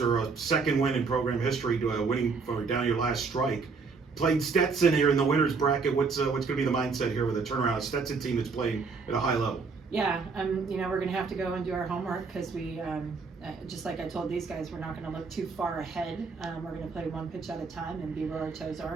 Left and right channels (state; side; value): quieter; left; 4.8 dB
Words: a second win in program history, winning for down your last strike. Played Stetson here in the winner's bracket. What's going to be the mindset here with a turnaround? A Stetson team that's playing at a high level. Yeah, you know, we're going to have to go and do our homework because we, just like I told these guys, we're not going to look too far ahead. We're going to play one pitch at a time and be where our toes